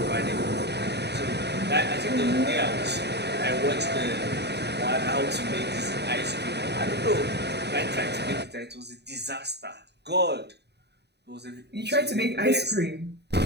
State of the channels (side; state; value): left; late; 0.49 ms